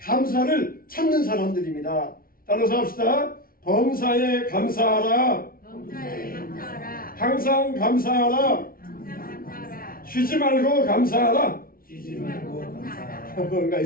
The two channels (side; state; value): right; late; 0.43 ms